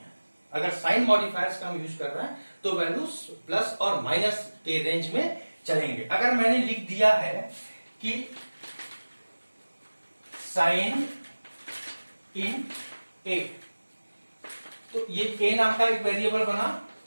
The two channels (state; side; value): inverted; both; correlation -1.00